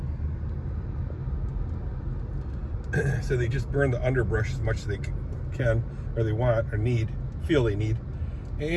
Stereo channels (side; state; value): both; identical; correlation 1.00